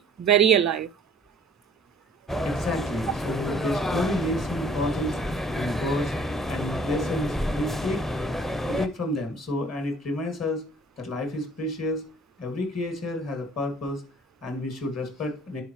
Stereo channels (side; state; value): both; normal; correlation 0.54